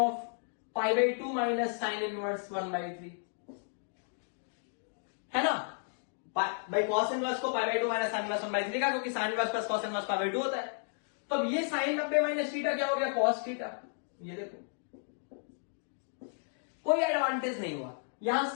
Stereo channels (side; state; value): right; silent; digital silence